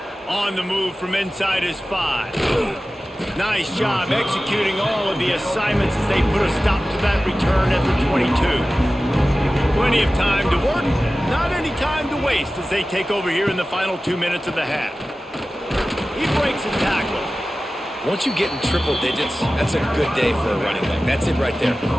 On the move from inside his 5. Nice job executing all of the assignments as they put a stop to that return at the 22. Plenty of time to work, not any time to waste as they take over here in the final 2 minutes of the half. He breaks a tackle. Once you get in triple digits, that's a good day for a running back. That's it right there.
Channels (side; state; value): both; normal; correlation 0.96